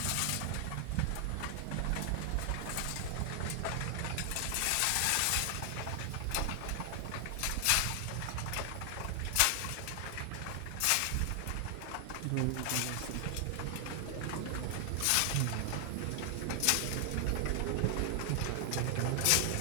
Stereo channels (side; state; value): both; different; correlation 0.00